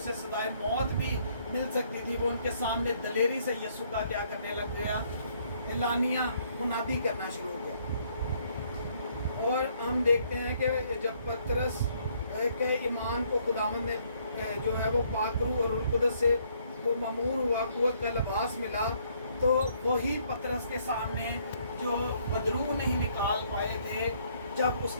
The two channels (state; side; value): inverted; both; correlation -0.67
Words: سزائے موت بھی مل سکتی تھی، وہ ان کے سامنے دلیری سے یسوع کا کیا کرنے لگ گیا؟ اعلانیہ منادی کرنا شروع ہو گیا۔ اور ہم دیکھتے ہیں کہ جب پترس کے ایمان کو خداوند نے جو ہے وہ پاک روح اور روح القدس سے وہ مامور ہوا، قوت کا لباس ملا، تو وہی پترس کے سامنے जो बदरू नहीं निकाल पाए थे, जब